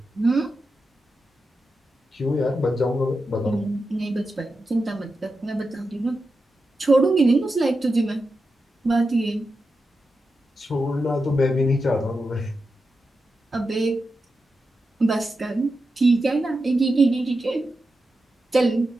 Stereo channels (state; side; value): normal; both; correlation 0.89